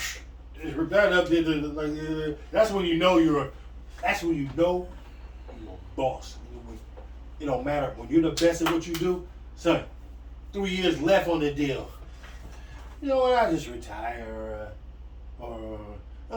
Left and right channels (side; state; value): both; identical; correlation 1.00